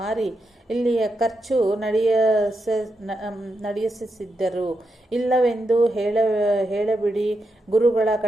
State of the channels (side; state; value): both; normal; correlation 0.85